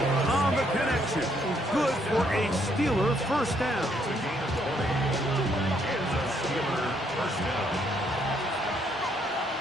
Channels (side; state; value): both; normal; correlation 0.71